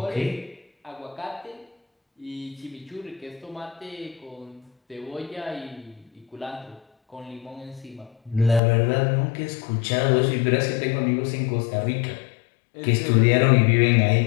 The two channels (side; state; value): right; drops out; at 8.6 s